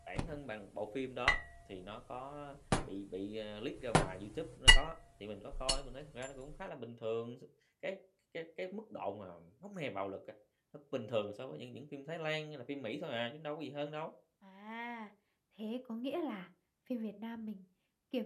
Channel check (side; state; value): both; identical; correlation 1.00